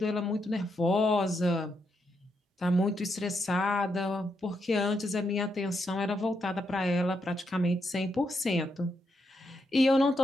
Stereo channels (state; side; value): normal; both; correlation 0.81